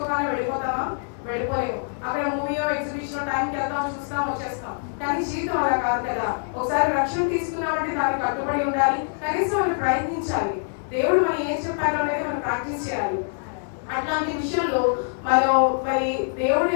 వెళ్ళిపోతామా? వెళ్ళిపోలేము. అక్కడ మూవీయో ఎగ్జిబిషన్ టైంకి వెళ్తాం, చూస్తాం, వచ్చేస్తాం. కానీ జీవితం అలా కాదు కదా. ఒకసారి రక్షణ తీసుకున్నామంటే దానికి కట్టుబడి ఉండాలి, కనీసం మనం ప్రయత్నించాలి. దేవుడు మనం ఏం చెప్పారో అనేది మనం ప్రాక్టీస్ చేయాలి. అట్లాంటి విషయంలో మనం మరి దేవుడు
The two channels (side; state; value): right; silent; 62 dB below the other